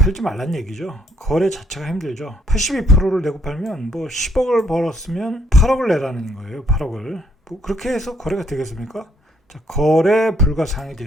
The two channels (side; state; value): both; normal; correlation 0.69